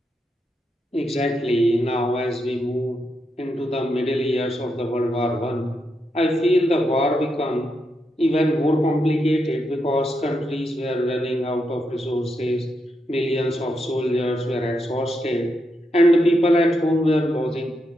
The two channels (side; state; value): both; normal; correlation 0.83